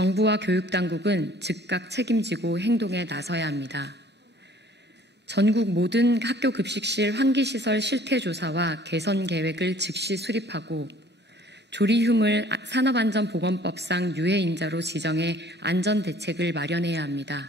교육당국은 즉각 책임지고 행동에 나서야 합니다. 전국 모든 학교급식실 환기시설 실태조사와 개선 계획을 즉시 수립하고 조리흉을 산업안전보건법상 유해인자로 지정해 안전대책을 마련해야 합니다.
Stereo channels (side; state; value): both; normal; correlation 0.54